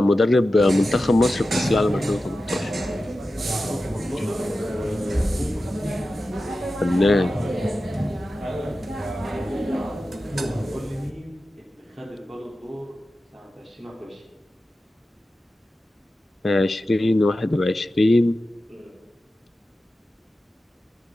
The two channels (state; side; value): normal; both; correlation 0.93